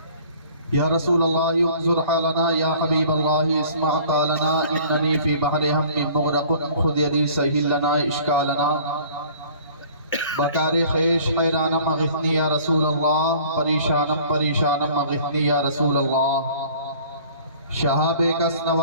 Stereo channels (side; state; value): both; inverted; correlation -0.50